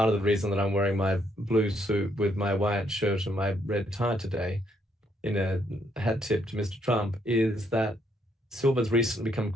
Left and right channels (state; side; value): normal; both; correlation 0.72